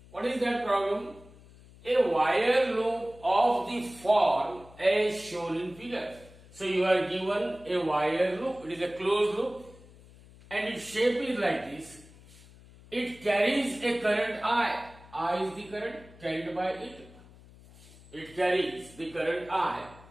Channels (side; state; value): left; noise; hum, 22 dB below the sound